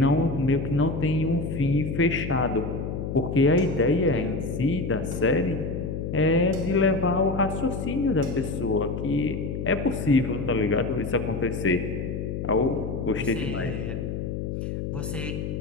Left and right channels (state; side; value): noise; left; hum, 4 dB below the sound